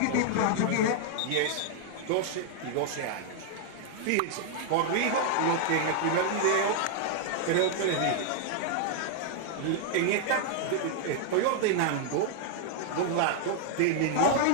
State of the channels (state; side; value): different; both; correlation 0.00